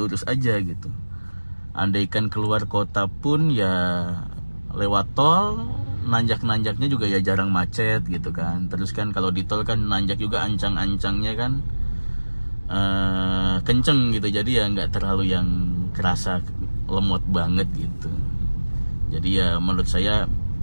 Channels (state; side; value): inverted; both; correlation -1.00